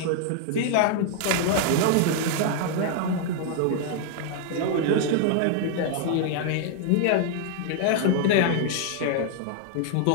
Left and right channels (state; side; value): different; both; correlation 0.00